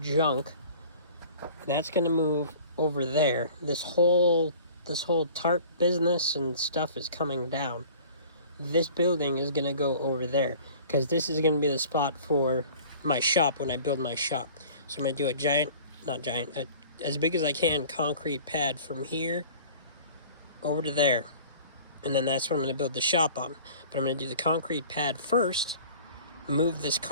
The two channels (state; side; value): inverted; both; correlation -0.46